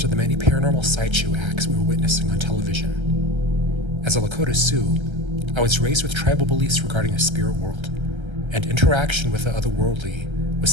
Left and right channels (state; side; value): late; left; 1.3 ms